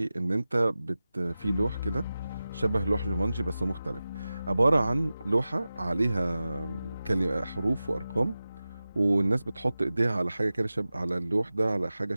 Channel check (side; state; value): both; inverted; correlation -0.95